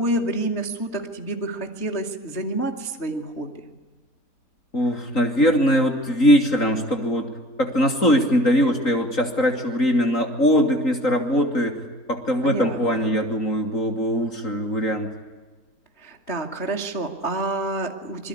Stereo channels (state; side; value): late; right; 3.8 ms